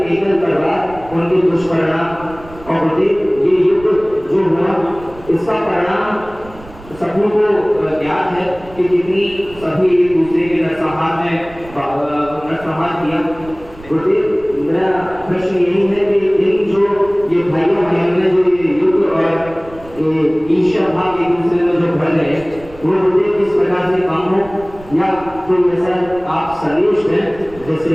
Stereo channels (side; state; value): right; noise; rumble, 20 dB below the sound